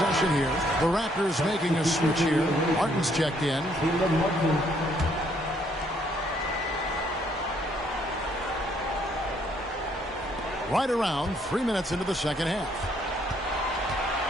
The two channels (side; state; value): both; normal; correlation 0.68